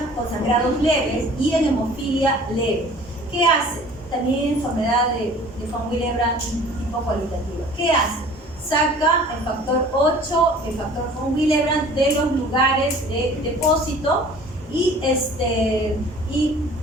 con sangrados leves y en hemofilia leve. ¿Qué hace? También enfermedad de von Willebrand tipo cualitativa. ¿Qué hace? Saca el factor 8, el factor von Willebrand de los lugares de depósito y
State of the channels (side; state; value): both; normal; correlation 0.48